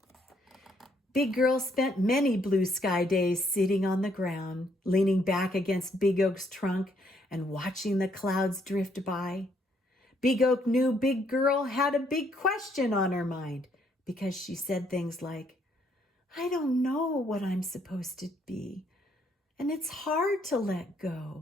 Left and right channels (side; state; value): both; normal; correlation 0.70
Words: Big Girl spent many blue sky days sitting on the ground, leaning back against Big Oak's trunk and watching the clouds drift by. Big Oak knew Big Girl had a big question on her mind because she said things like, "I don't know what I'm supposed to be, and it's hard to let